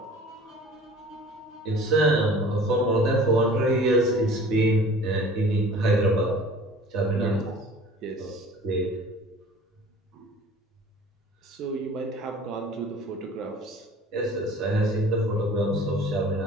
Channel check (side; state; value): both; normal; correlation 0.46